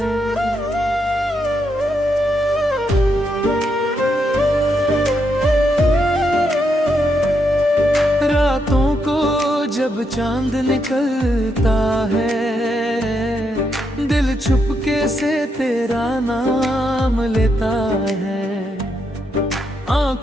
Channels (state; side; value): normal; both; correlation 0.80